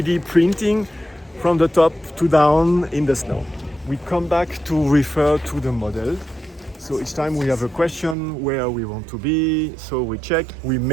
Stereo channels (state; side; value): drops out; left; at 8.2 s